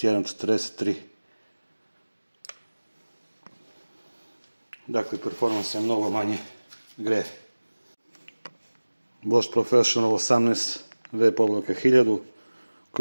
43. Dakle, performans je mnogo manje greje. Bosch Professional 18V/1000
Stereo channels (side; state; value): both; inverted; correlation -1.00